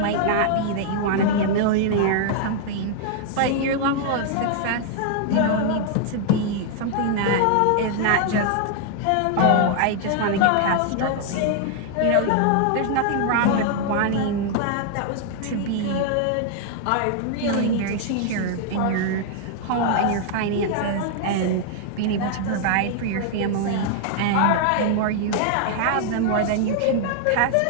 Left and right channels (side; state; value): both; different; correlation 0.00